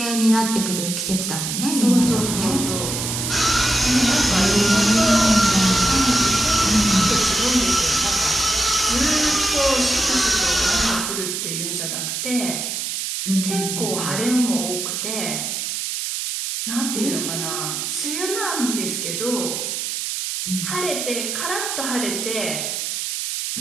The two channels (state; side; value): noise; right; hiss, 3 dB below the sound